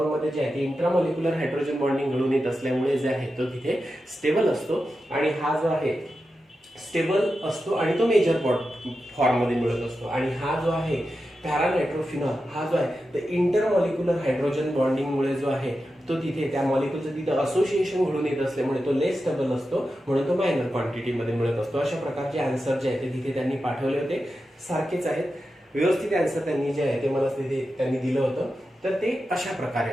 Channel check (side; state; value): both; normal; correlation 0.90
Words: मध्ये जे आहे ते इंट्रामॉलिक्युलर हायड्रोजन बॉन्डिंग घडून येत असल्यामुळे जे आहे तो तिथे स्टेबल असतो आणि हा जो आहे स्टेबल असतो आणि तो मेजर फॉर्म मध्ये मिळत असतो. आणि हा जो आहे पॅरानायट्रोफिनॉल हा जो आहे तर इंटरमॉलिक्युलर हायड्रोजन बॉन्डिंग मुळे जो आहे तो तिथे त्या मॉलिक्यूलचं तिथे असोसिएशन घडून येत असल्यामुळे तो लेस स्टेबल असतो, म्हणून तो मायनर क्वांटिटी मध्ये मिळत असतो. अशा प्रकारचे आन्सर जे आहे ते तिथे त्यांनी पाठवले होते, सारखेच आहेत, व्यवस्थित आन्सर त्यांनी जे आहे ते मला तिथे त्यांनी दिलं होतं. तर ते अशा